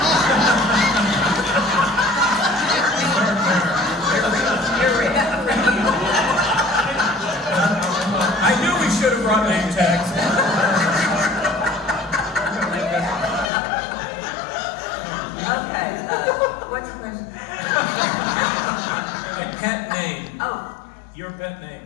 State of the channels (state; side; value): drops out; right; at 13.5 s